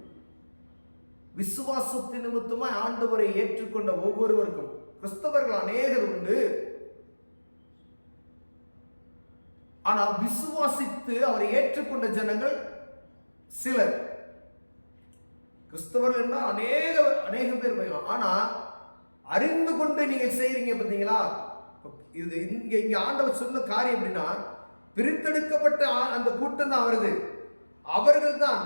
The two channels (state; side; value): inverted; both; correlation -1.00